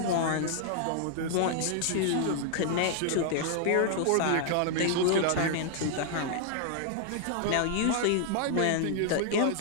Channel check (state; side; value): different; both; correlation -0.01